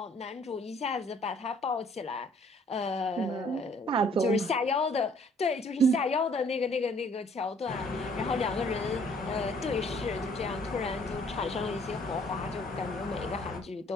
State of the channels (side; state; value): both; normal; correlation 0.59